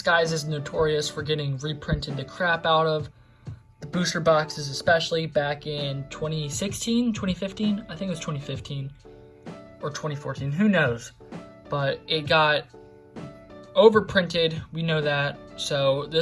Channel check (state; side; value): identical; both; correlation 1.00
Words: is notorious for getting reprinted the crap out of. The booster boxes especially back in 2016, 2015, I think it was 2015 or 2014, who knows, but it got overprinted, we know that. So